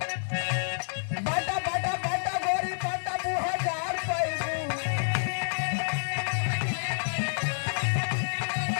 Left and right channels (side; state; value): right; silent; 59 dB below the other